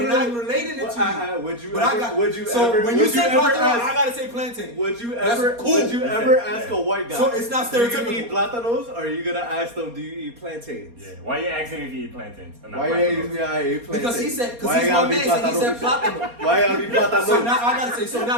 and I'm relating it to you. Would you But I ever? got, Would you so ever? when you would say ever plátano, ask- I gotta say plantain. Would you That's ever? cool. Would you Listen, ever yeah. ask a white guy? So it's not Do you stereotypical. eat plátanos, or are you gonna ask them? Do you eat plantains? yeah. Why you asking me if you eat plantains? And not Why you plantains? ask me? I eat plantains. Because he said, Why because he's it my gotta be man, so he said plátano? plátano. Why it gotta be plátano? So now I gotta say, so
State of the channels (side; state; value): left; late; 4.3 ms